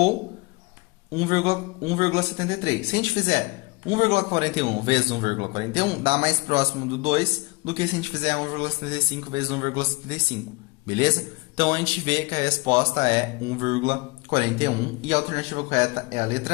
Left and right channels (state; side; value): quieter; right; 25.5 dB